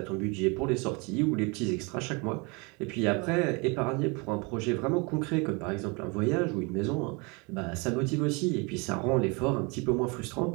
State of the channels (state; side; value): quieter; left; 29.9 dB